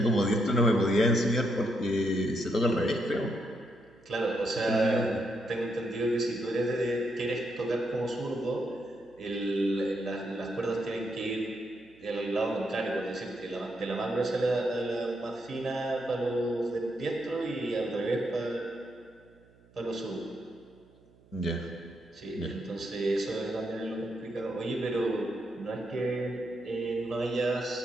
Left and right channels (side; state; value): right; noise; hum, 28 dB below the sound